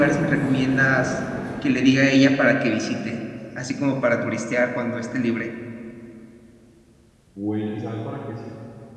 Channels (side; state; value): both; identical; correlation 1.00